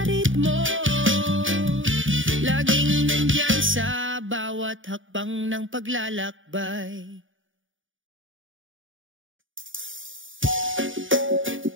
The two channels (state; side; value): late; left; 0.57 ms